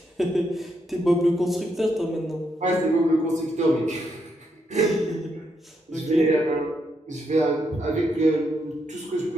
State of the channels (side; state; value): both; normal; correlation 0.79